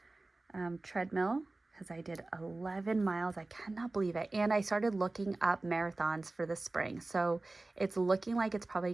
Treadmill, because I did 11 miles. I cannot believe it. And I started looking up marathons for the spring. So it's looking like it's probably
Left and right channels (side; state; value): left; quieter; 3.1 dB